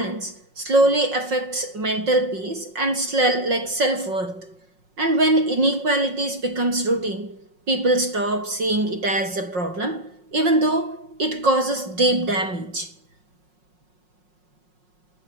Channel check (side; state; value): left; late; 5.5 ms